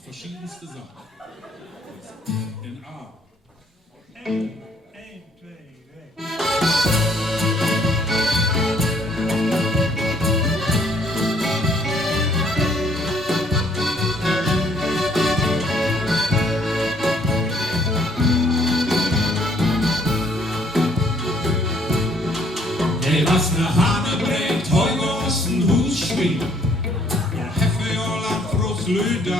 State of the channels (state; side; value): normal; both; correlation 0.64